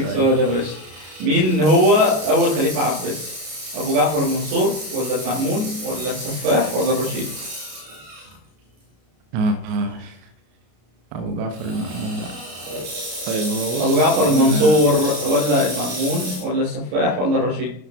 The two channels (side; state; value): left; late; 33 ms